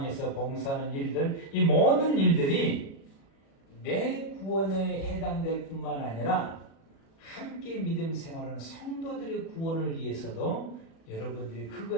봉사하는 일들, 이 모든 일들이 내 구원에 해당될 뿐만 아니라 함께 믿음 생활하는 성도들의 구원을 위해서도 여러분들이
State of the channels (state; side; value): late; right; 36 ms